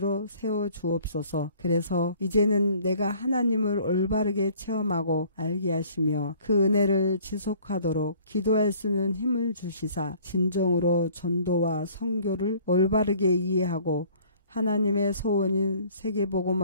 세워 주옵소서. 그래서 이제는 내가 하나님을 올바르게 체험하고 알게 하시며 그 은혜를 지속하도록 기도할 수 있는 힘을 주시사 진정으로 전도와 선교를 올바르게 이해하고 하나님의 소원인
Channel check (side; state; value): both; inverted; correlation -0.54